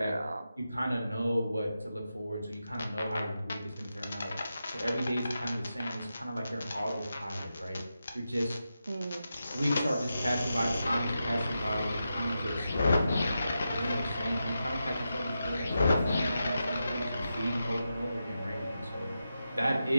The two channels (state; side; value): inverted; both; correlation -0.88